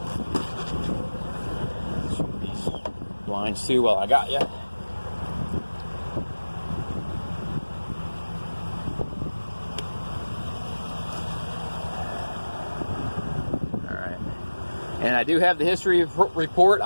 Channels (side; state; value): both; inverted; correlation -1.00